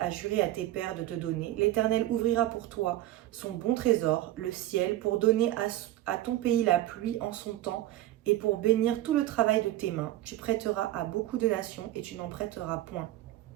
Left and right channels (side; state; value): left; quieter; 14.8 dB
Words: juré à tes pères de te donner, l'Éternel ouvrira pour toi son bon trésor, le ciel, pour donner à ton pays la pluie en son temps et pour bénir tout le travail de tes mains. Tu prêteras à beaucoup de nations et tu n'en prêteras point.